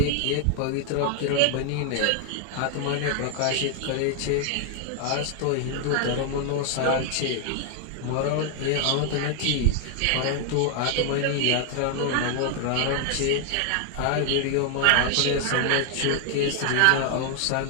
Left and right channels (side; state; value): both; different; correlation 0.00